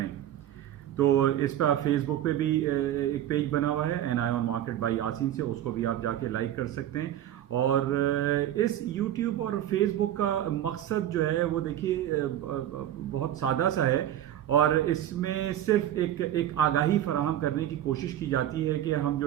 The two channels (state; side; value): quieter; left; 11.8 dB